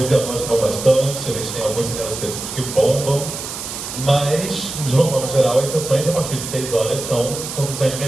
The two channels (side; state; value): right; noise; hiss, 8 dB below the sound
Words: e a voz estão bastante, a gente tem alguns cinemas específicos que bombam, mas, de uma forma geral, as sessões a partir de 6 horas são sessões